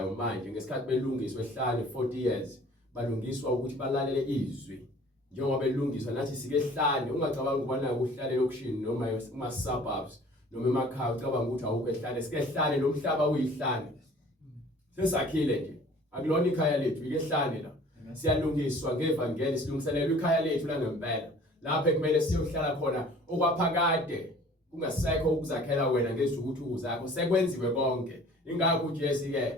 manje ngesikhathi belungiswa ehlanu 40 years balungiswa ukuthi balalele izwi njengoba belungiswa nathi sike ehlanu. Ungacabanga ukubana ukuhlalela okushini noma kuma suburbs noma emakhaya ucabanga ukuthi awukho ehlane. Sike ehlane nomhlaba uyihlane sesakhile nje, akulona ikhaya lethu ike ehlane la. Siyalungiswa ngevangeli silungiselela ikhaya lethu la ngempela lapho ekumele siyohlala khona okwaphakade kungasekho ukuzakhela wena ngezithukuthuku zakho sekwenziwe konke. Ingakho uJesu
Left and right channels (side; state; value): both; normal; correlation 0.50